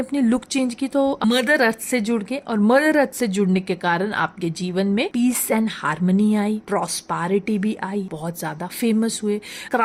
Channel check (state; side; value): identical; both; correlation 1.00